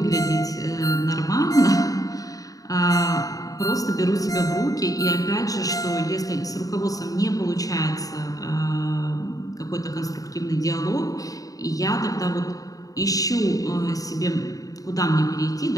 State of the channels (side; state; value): right; late; 0.17 ms